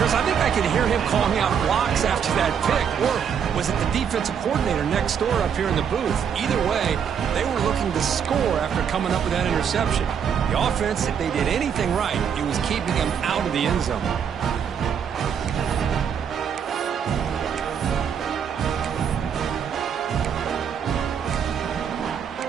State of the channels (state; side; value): quieter; left; 7.7 dB